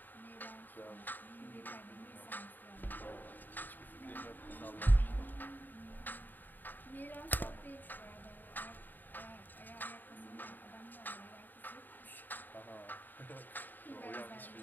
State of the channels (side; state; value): right; late; 0.089 ms